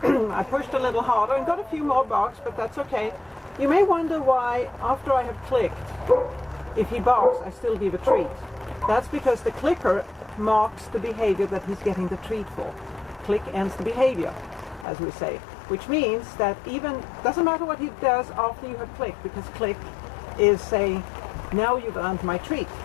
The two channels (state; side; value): drops out; right; at 14.9 s